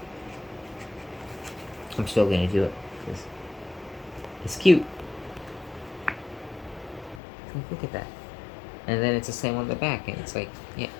still going to do it. It's cute. Look at that. And then it's the same on the back, and it's like, yeah.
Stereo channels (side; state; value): right; drops out; at 7.2 s